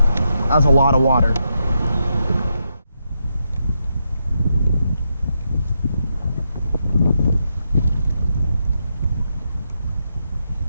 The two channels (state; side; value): inverted; both; correlation -0.83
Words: that was a lot of water.